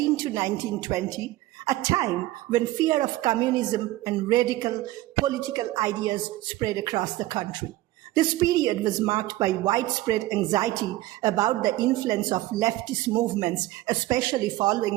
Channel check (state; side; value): quieter; left; 16.8 dB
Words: to 1920, a time when fear of communism and radical political ideas spread across the country. This period was marked by widespread anxiety about the influence of leftist movements, especially